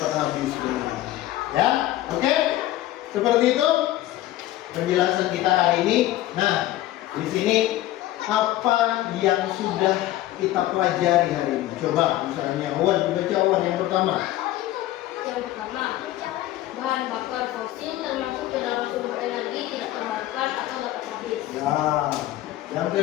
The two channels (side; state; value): right; quieter; 15.0 dB